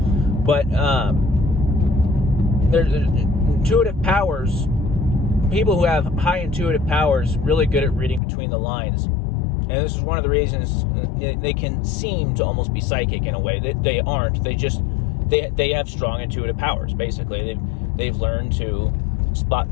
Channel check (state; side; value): drops out; right; at 8.2 s